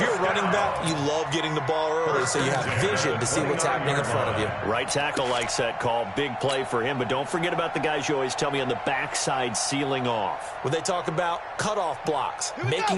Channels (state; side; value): identical; both; correlation 1.00